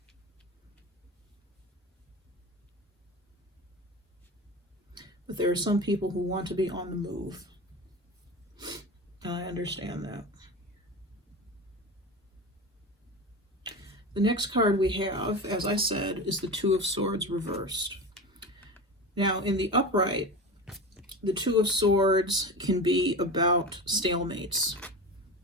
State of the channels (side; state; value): both; normal; correlation 0.27